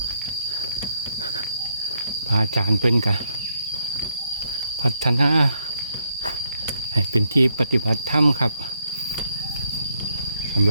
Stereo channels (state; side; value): inverted; both; correlation -0.76